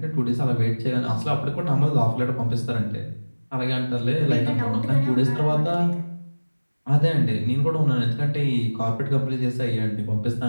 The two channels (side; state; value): both; inverted; correlation -1.00